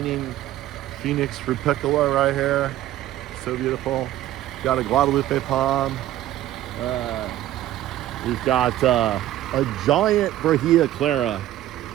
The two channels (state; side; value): quieter; left; 13.7 dB